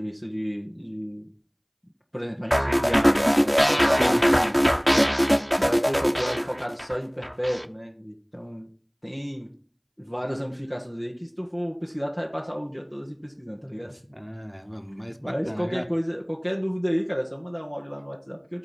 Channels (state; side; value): identical; both; correlation 1.00